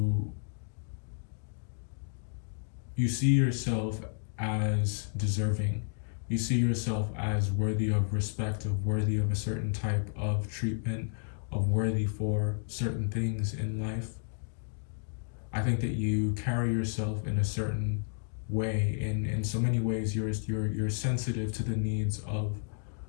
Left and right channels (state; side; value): silent; right; digital silence